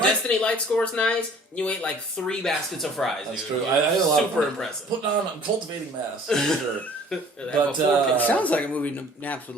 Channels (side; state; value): both; normal; correlation 0.52